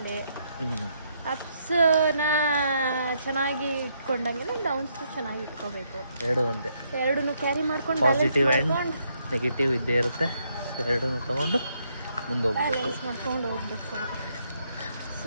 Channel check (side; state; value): both; inverted; correlation -0.75